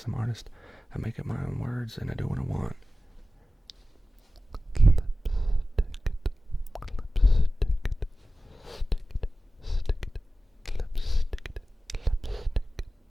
artist. I make up my own words and I do what I want.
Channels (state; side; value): normal; both; correlation 0.95